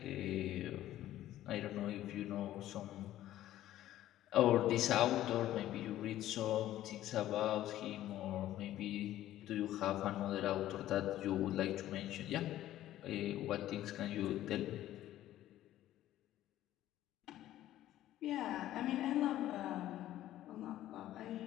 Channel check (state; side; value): quieter; right; 13.5 dB